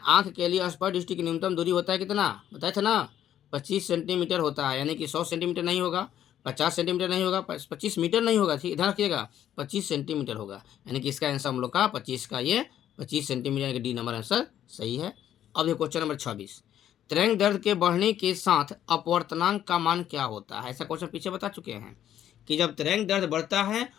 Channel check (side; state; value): right; quieter; 10.9 dB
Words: के लिए स्पर्श दृष्टि की न्यूनतम दूरी होता है कितना, बताए थे ना 25 सेंटीमीटर होता है, यानी कि 100 सेंटीमीटर नहीं होगा, 50 सेंटीमीटर नहीं होगा, 25 मीटर नहीं होगा, ठीक ध्यान रखिएगा 25 सेंटीमीटर होगा, यानी कि इसका आंसर हम लोग का 25 का ये 25 सेंटीमीटर, यानी कि डी नंबर आंसर सही है। अब ये क्वेश्चन नंबर 26, तरंग दर्द के बढ़ने के साथ अपवर्तनांक का मान क्या होता है। ऐसा क्वेश्चन पीछे बता चुके हैं कि जब तरंग दर्द बढ़ता है